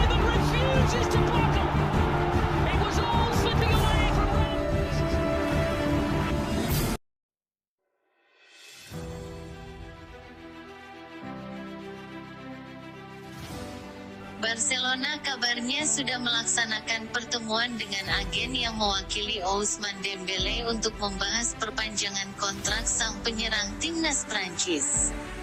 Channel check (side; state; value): both; identical; correlation 1.00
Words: Barcelona kabarnya sudah melaksanakan pertemuan dengan agen yang mewakili Ousmane Dembélé untuk membahas perpanjangan kontrak sang penyerang timnas Prancis.